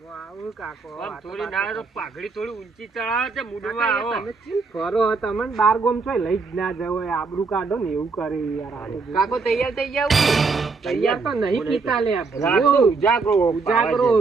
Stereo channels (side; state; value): left; quieter; 4.4 dB